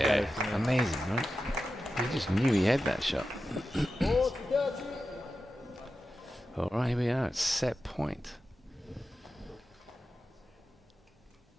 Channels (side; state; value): both; normal; correlation 0.92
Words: amazing, right? He just knew he had that shot. All right, here we are at set point.